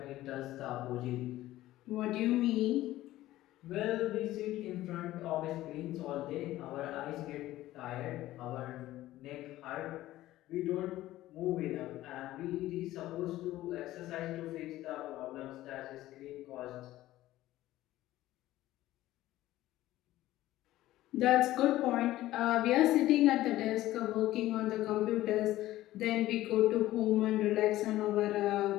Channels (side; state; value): right; quieter; 15.5 dB